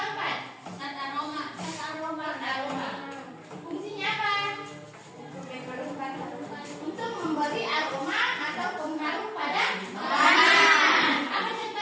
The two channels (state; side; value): identical; both; correlation 1.00